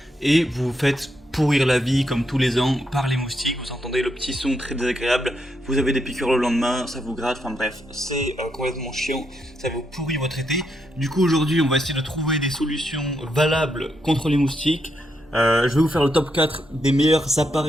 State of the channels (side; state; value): both; normal; correlation 0.80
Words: et vous vous faites pourrir la vie comme tous les ans par les moustiques. Vous entendez le petit son très désagréable, vous avez des piqûres le lendemain, ça vous gratte, enfin bref, c'est complètement chiant, ça vous pourrit votre été. Du coup aujourd'hui on va essayer de trouver des solutions valables contre les moustiques. Je vais vous faire le top 4 des meilleurs